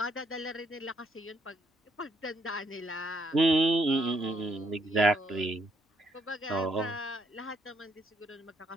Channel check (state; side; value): normal; both; correlation 0.70